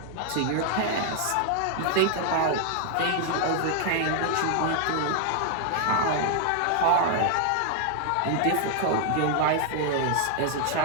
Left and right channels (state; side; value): different; both; correlation 0.00